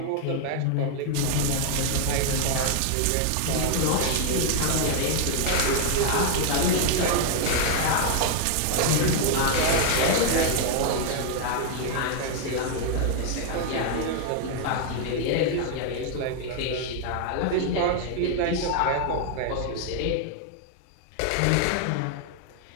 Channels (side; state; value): both; different; correlation 0.00